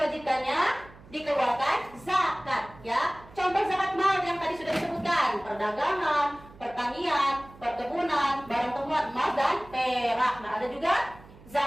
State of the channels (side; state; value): right; noise; hum, 22 dB below the sound